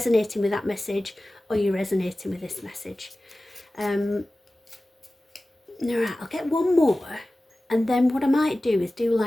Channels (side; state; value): both; normal; correlation 0.96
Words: with that message, or you're resonating with this message. All right, I'll get one more, and then what I might do is do